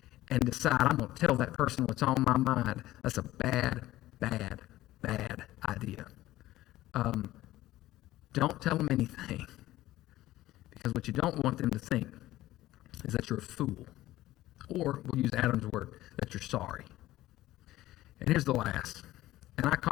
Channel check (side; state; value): right; quieter; 15.8 dB